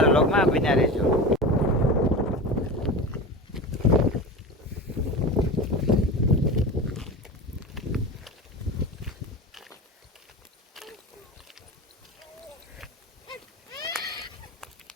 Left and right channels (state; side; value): normal; both; correlation 0.28